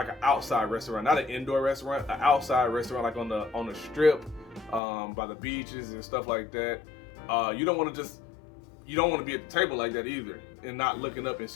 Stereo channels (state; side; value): drops out; right; at 4.8 s